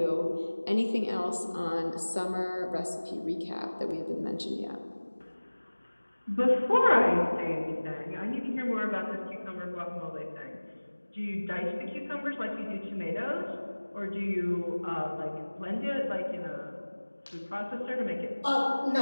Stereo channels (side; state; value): both; inverted; correlation -1.00